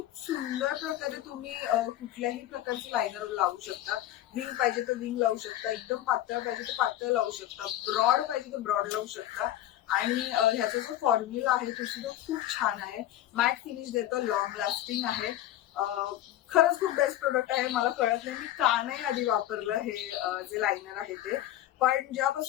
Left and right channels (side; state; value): right; quieter; 13.4 dB